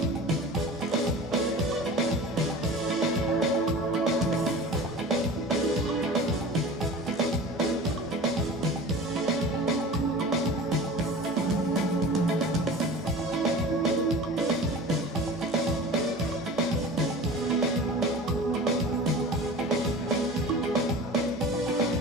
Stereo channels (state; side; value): normal; both; correlation 0.38